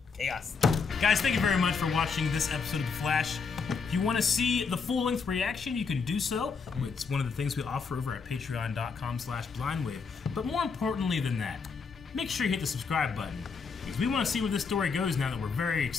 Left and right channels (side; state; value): right; quieter; 5.3 dB